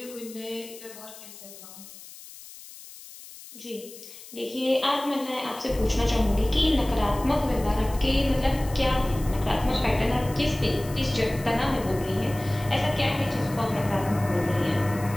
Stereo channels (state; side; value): noise; left; hiss, 17 dB below the sound